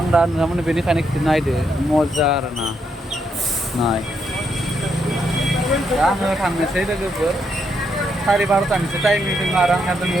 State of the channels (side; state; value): both; normal; correlation 0.78